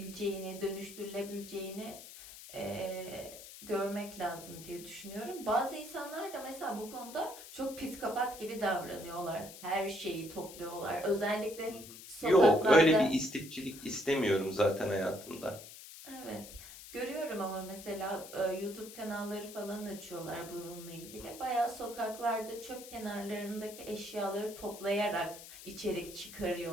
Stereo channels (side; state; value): left; noise; hiss, 14 dB below the sound